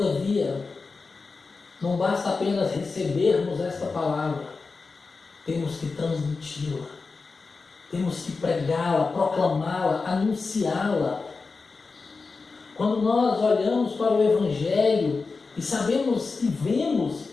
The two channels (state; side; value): quieter; right; 4.3 dB